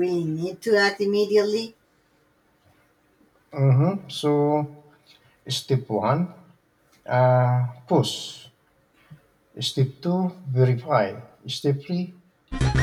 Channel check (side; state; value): both; identical; correlation 1.00